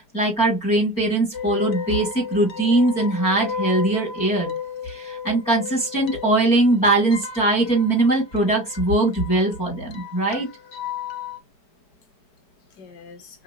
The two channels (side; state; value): right; late; 4.4 ms